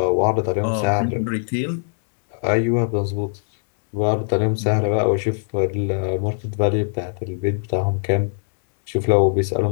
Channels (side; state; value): right; silent; digital silence